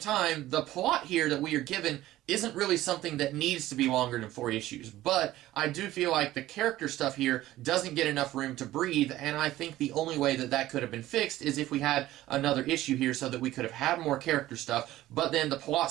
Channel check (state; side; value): quieter; left; 15.3 dB